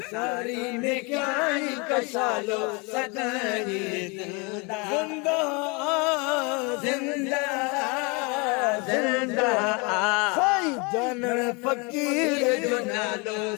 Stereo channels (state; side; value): quieter; right; 30.1 dB